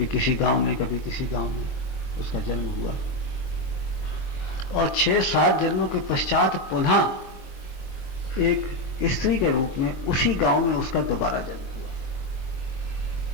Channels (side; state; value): right; late; 23 ms